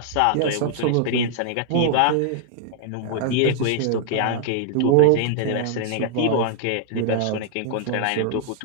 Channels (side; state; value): both; different; correlation -0.01